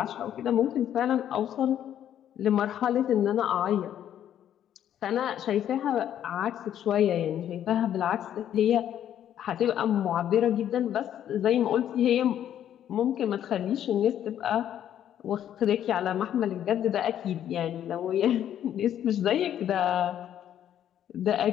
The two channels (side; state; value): right; quieter; 10.5 dB